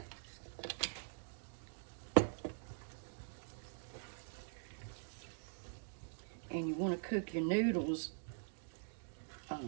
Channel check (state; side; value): silent; left; digital silence